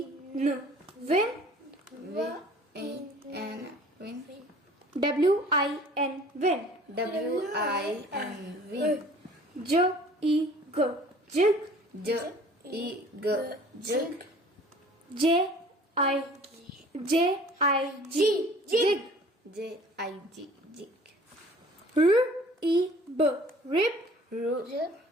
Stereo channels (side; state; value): both; normal; correlation 0.50